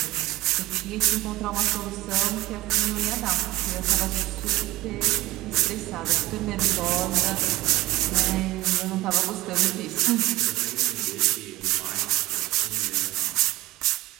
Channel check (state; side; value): quieter; left; 18.3 dB